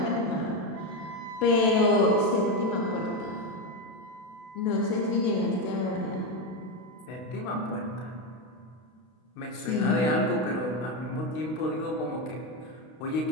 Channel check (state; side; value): late; right; 32 ms